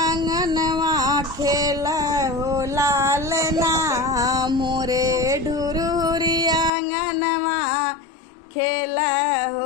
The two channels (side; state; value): right; drops out; at 6.7 s